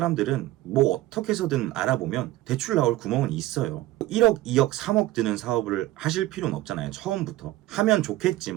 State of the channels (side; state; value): left; quieter; 16.3 dB